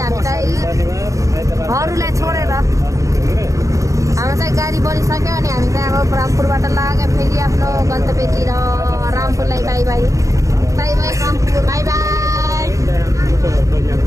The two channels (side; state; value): left; late; 0.16 ms